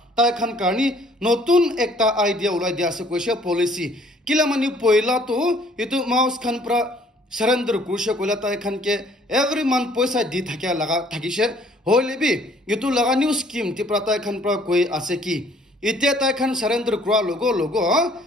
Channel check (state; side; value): normal; both; correlation 0.59